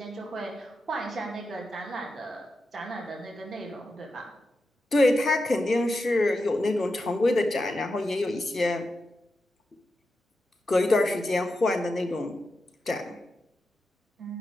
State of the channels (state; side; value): normal; both; correlation 0.89